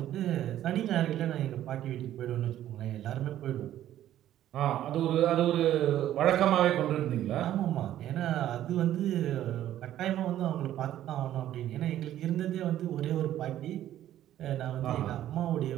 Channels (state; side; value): quieter; left; 12.3 dB